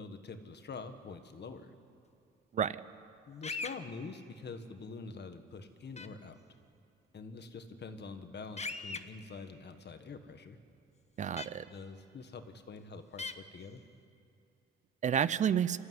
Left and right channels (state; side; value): quieter; left; 4.4 dB